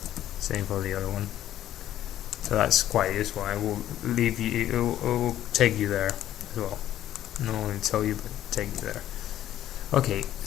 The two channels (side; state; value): right; quieter; 12.4 dB